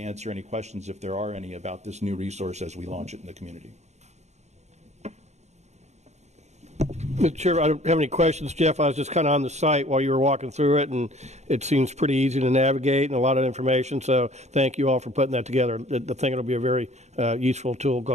any questions if there are any about this new resource as we launch it in the community. Mr. Chair, I don't have any questions. Jeff, I was just kind of on the site while you were walking through it, and it seems pretty easy to navigate and a lot of information, so thank you all for putting that together. I think it'll be a very useful tool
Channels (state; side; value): late; left; 0.33 ms